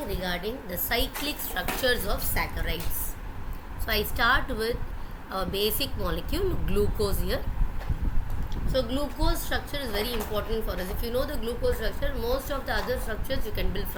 regarding the cyclic structures of saccharides. So I start with our basic molecule glucose here. So glucose structure is very important for us. If you know the glucose structure, most of the other structures you can build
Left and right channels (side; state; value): both; identical; correlation 1.00